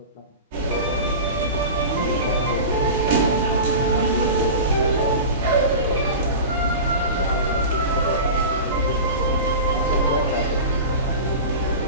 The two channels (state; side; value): inverted; both; correlation -0.30